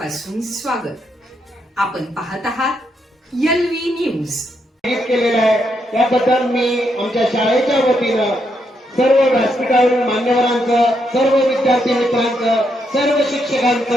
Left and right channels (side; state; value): both; normal; correlation 0.79